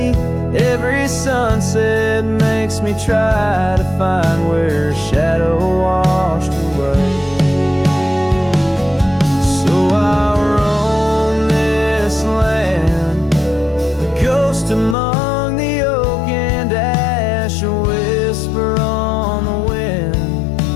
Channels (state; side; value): drops out; right; at 15.0 s